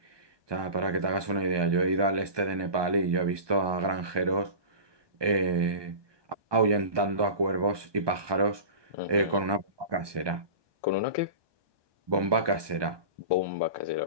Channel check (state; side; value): late; left; 1.2 ms